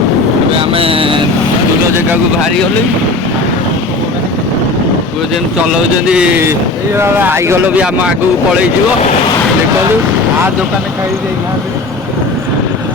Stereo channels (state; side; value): quieter; right; 3.1 dB